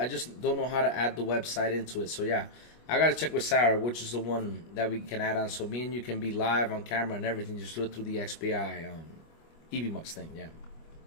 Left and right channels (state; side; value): late; right; 25 ms